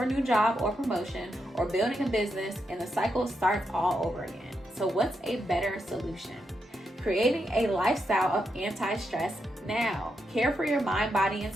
a new job or promotion, or building a business, and the cycle starts all over again. So what's a better solution? Creating a lifestyle of anti-stress now. Care for your mind, body, and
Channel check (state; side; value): normal; both; correlation 0.83